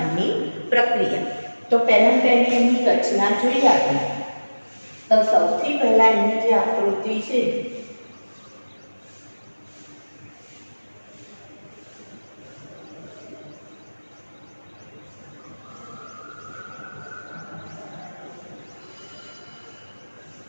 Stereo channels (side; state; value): both; inverted; correlation -1.00